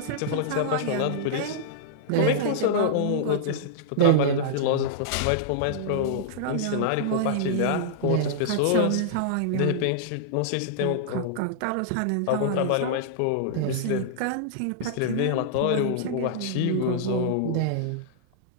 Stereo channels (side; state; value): both; different; correlation -0.02